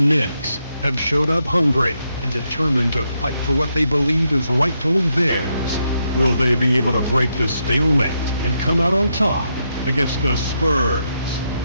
have showed up hungry and determined to fight for what they believe is rightfully theirs. Will they be able to break the stalemate and come out on top against the Spurs?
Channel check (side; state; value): both; inverted; correlation -0.81